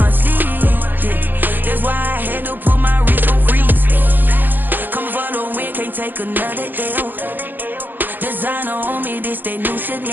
sleeve. Yeah, that's why I had to put my wrist on freeze. Coming for the win, can't take another L. Designer on me, this that new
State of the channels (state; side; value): late; left; 0.092 ms